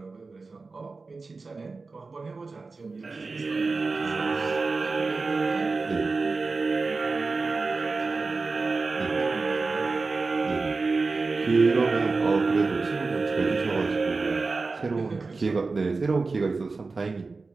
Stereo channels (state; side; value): quieter; left; 3.9 dB